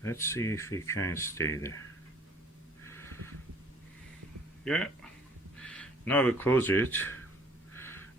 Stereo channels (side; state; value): both; normal; correlation 0.55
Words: Let's see if we can stay there. Yeah. Now I will close it,